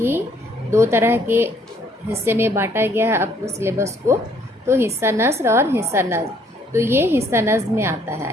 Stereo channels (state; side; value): normal; both; correlation 0.64